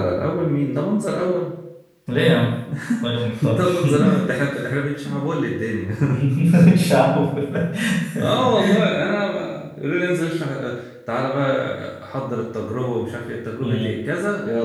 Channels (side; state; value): both; identical; correlation 1.00